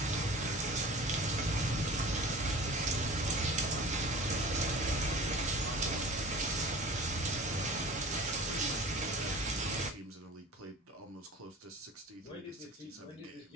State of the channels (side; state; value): both; normal; correlation 0.41